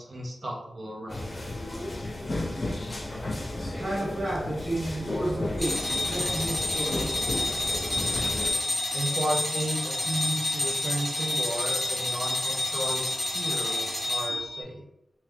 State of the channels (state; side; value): normal; both; correlation 0.95